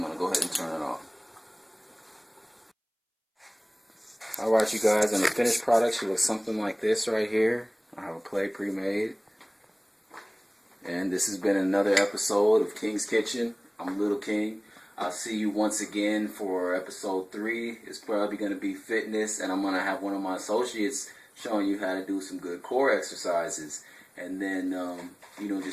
going to go ahead and turn it off. Alright, you guys, and the finished product should look something like this right here. I have a plate pre-made. And this has been another episode of King's Kitchen. I'm Little King. I'll see you once again for episode 3. It's probably going to be fitness, and I'm going to have one of my associates showing you how to do some good core exercises. And then,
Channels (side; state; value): both; identical; correlation 1.00